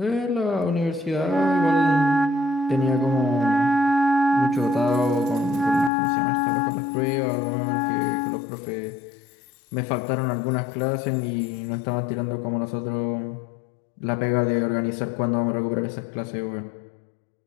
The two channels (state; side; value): drops out; right; at 5.9 s